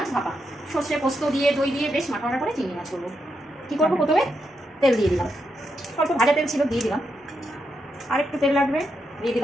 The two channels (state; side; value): normal; both; correlation 0.83